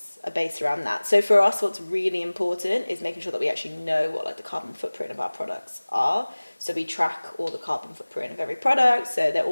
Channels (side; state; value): both; inverted; correlation -1.00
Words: are based around that. So for us, what's really important is making sure that we actually know what like the carbon footprint of our products are. So we track all the carbon footprint of every product. So they're